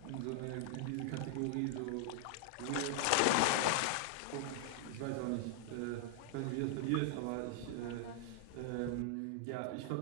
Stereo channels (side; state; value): both; different; correlation -0.01